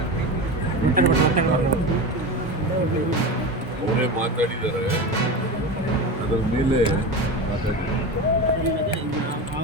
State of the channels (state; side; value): normal; both; correlation 0.24